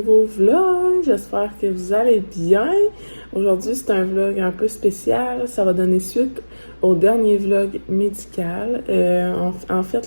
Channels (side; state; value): both; inverted; correlation -1.00